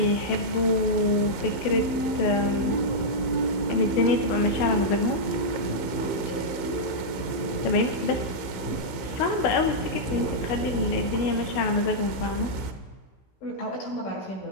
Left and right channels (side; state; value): right; late; 15 ms